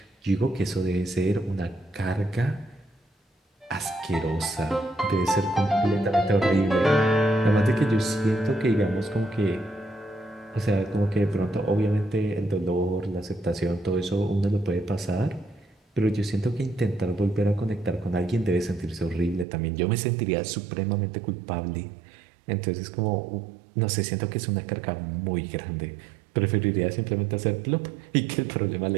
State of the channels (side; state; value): left; drops out; at 19.5 s